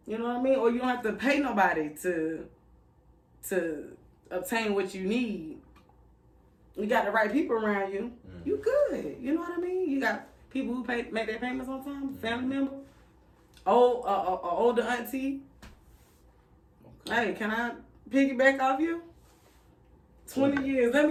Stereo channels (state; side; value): identical; both; correlation 1.00